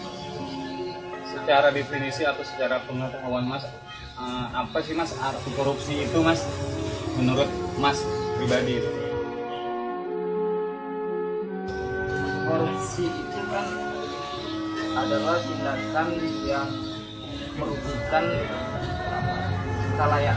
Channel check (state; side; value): identical; both; correlation 1.00